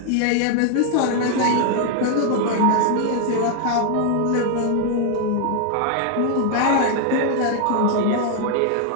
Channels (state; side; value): different; both; correlation 0.00